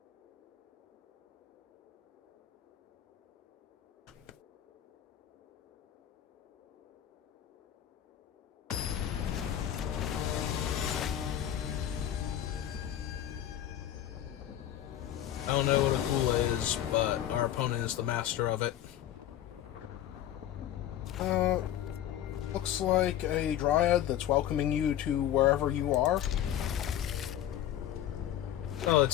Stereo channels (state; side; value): quieter; right; 11.6 dB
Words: don't know what a Kula is, but our opponent is the master of it. Looks like a dryad that's welcoming you to wherever you are. Oh,